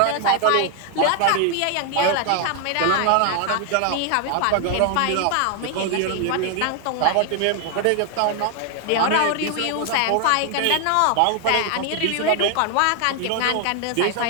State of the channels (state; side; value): different; both; correlation 0.00